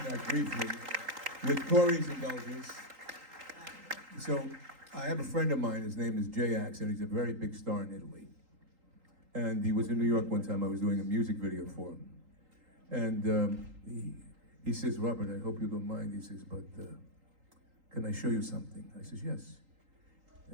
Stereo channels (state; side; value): late; left; 3.8 ms